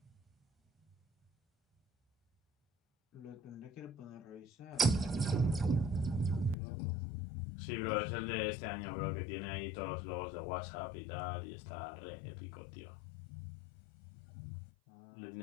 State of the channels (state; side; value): drops out; right; at 6.6 s